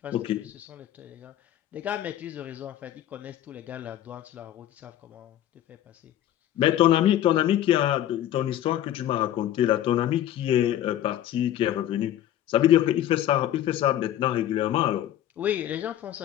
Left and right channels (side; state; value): right; quieter; 12.0 dB